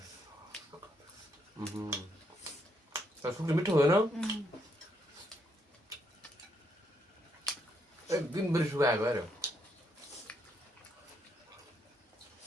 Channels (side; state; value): both; normal; correlation 0.75